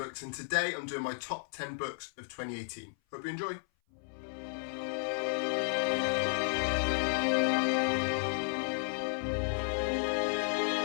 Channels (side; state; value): right; silent; 56 dB below the other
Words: and today I'm doing my top 10 books of 2018. Hope you enjoy.